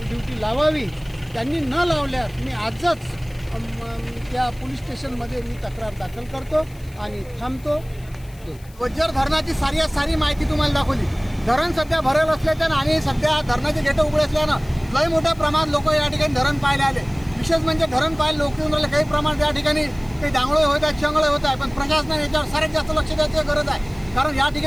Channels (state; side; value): noise; left; hiss, 26 dB below the sound